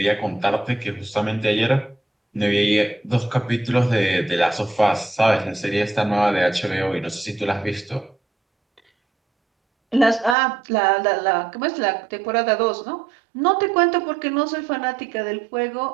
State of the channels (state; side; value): drops out; left; at 10.4 s